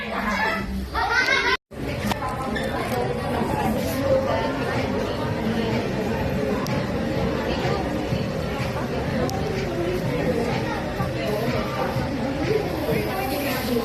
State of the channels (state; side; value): identical; both; correlation 1.00